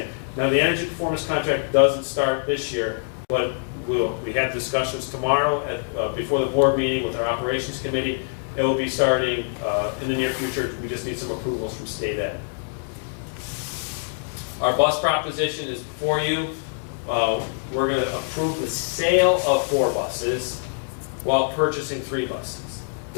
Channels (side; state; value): right; silent; digital silence